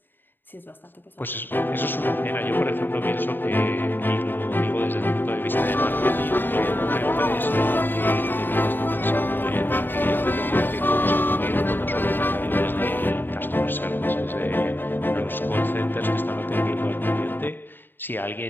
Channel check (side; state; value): right; late; 0.094 ms